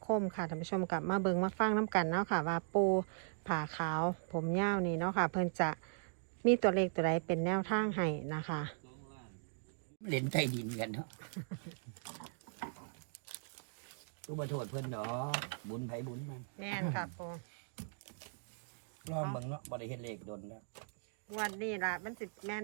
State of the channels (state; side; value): silent; left; digital silence